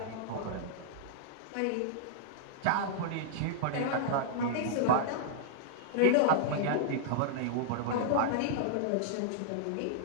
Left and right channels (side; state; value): both; different; correlation -0.01